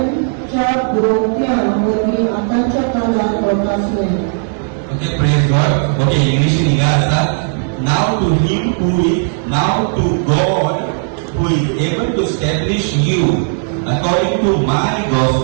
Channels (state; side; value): silent; left; 70 dB below the other